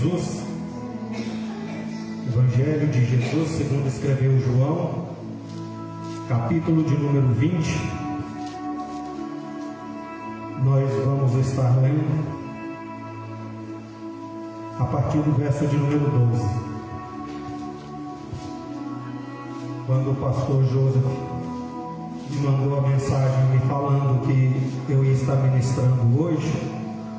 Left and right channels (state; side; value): identical; both; correlation 1.00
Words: Evangelho de Jesus segundo escreveu João, capítulo de número 20. Nós vamos estar lendo a partir do verso de número 12. Quando o pastor Joseph me mandou a mensagem me falando que eu ia estar ministrando hoje,